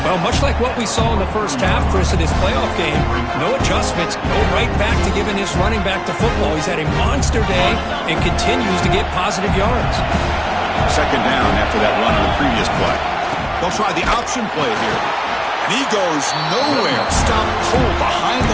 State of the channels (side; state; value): both; identical; correlation 1.00